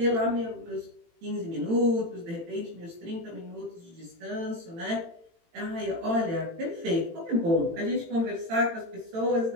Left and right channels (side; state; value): left; late; 18 ms